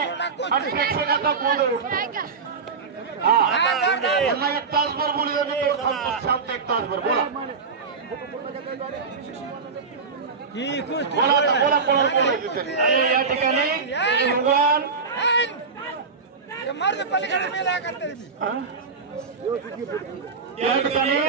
आणि प्रेक्षकाचा गोंधळ उठतो. त्यांना 1 तासभर बोलू द्या. मी शांत 1 तासभर बोला. बोला बोला या ठिकाणी भगवान या ठिकाणी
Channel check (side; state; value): left; quieter; 5.0 dB